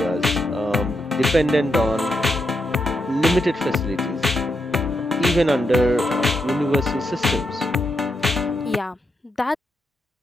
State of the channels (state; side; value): normal; both; correlation 0.83